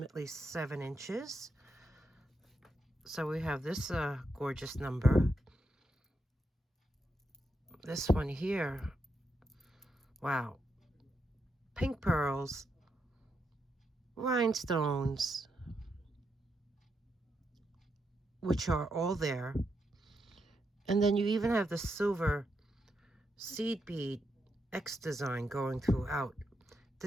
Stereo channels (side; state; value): both; normal; correlation 0.82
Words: 7 inches. So we have this gorgeous number. This one here. Wow. Pink pearls. Rhinestones. Which are all there. And then you even have the silver seed bead X design going throughout.